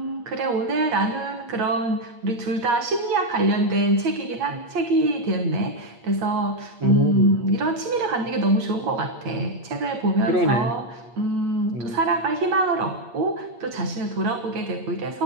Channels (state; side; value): late; left; 8.5 ms